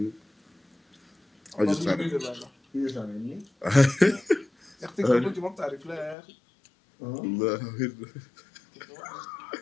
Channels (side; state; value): right; drops out; at 6.2 s